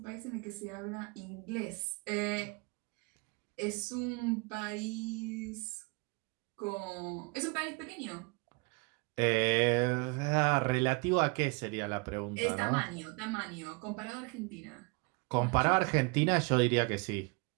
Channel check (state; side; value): quieter; left; 29.7 dB